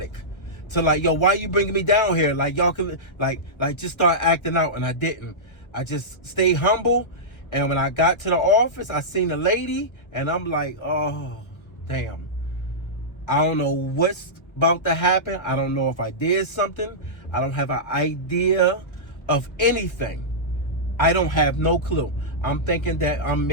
To like, yo, why you bringing me down here? Like, y'all can, like just start acting out. And I didn't. I just stayed humble. And when I got to the office, I seen a lady, and I'm like, oh, damn. I don't know what's about to happen. I don't know if I did something. I don't have an idea of anything. I don't have no clue. I'm thinking that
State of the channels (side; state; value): right; late; 1.0 ms